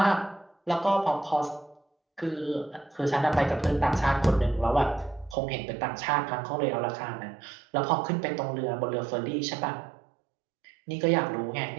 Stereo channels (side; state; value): left; drops out; at 5.4 s